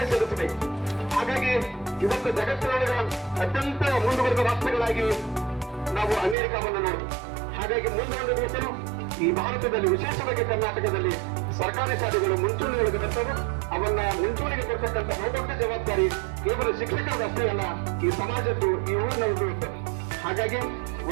ಸೇರಿಸಬೇಕು. ಹಾಗಾಗಿ ಇವತ್ತು ಜಗತ್ತಿನೊಳಗೆ ಅತ್ಯಂತ ಮುಂದುವರೆದ ರಾಷ್ಟ್ರಗಳಾಗಿ ನಾವು ಅಮೆರಿಕವನ್ನು ನೋಡ್ತೀವಿ. ಹಾಗಾಗಿ ಮುಂದೊಂದು ದಿವಸ ಈ ಭಾರತದಲ್ಲಿ, ವಿಶೇಷವಾಗಿ ಕರ್ನಾಟಕದಲ್ಲಿ ಸರ್ಕಾರಿ ಶಾಲೆಗಳು ಮುಂಚೂಣಿಯೊಳಗೆ ಬರ್ತವೆ. ಅವನ್ನ ಮುಂಚೂಣಿಗೆ ಕೊಡ್ತಕ್ಕಂಥ ಬಹುದೊಡ್ಡ ಜವಾಬ್ದಾರಿ ಕೇವಲ ಶಿಕ್ಷಕರಷ್ಟೇ ಅಲ್ಲ, ಈ ಸಮಾಜದ್ದು, ಈ ಊರಿನವ್ರದ್ದು ಇರ್ತದೆ. ಹಾಗಾಗಿ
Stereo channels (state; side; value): drops out; left; at 6.4 s